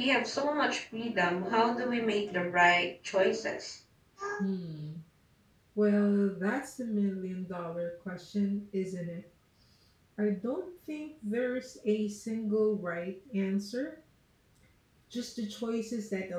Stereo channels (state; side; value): identical; both; correlation 1.00